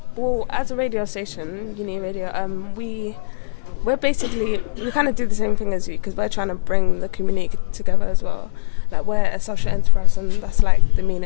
Well, as a radio station, Uni Radio, we're basically, we kind of do the same thing as you, because we're trying to bring the community together as well. Like, we're a social enterprise, and that's like the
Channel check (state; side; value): quieter; right; 33.7 dB